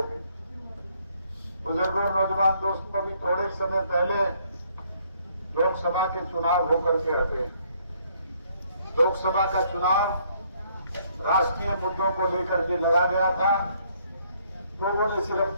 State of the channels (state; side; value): inverted; both; correlation -0.67